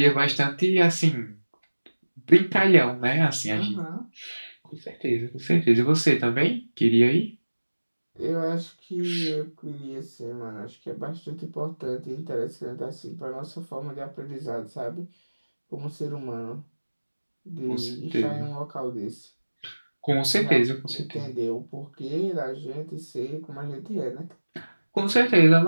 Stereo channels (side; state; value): both; inverted; correlation -1.00